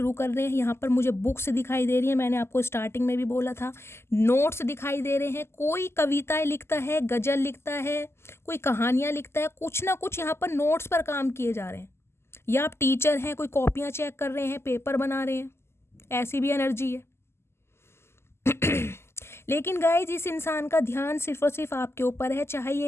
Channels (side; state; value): right; late; 0.12 ms